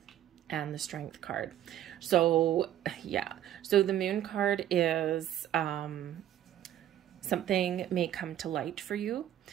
and the Strength card. So yeah, so the moon card is something may come to light for you.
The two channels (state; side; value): quieter; left; 11.8 dB